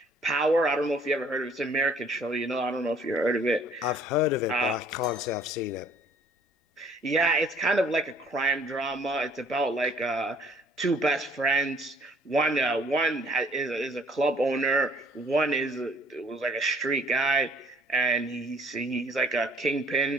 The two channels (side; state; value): both; normal; correlation 0.58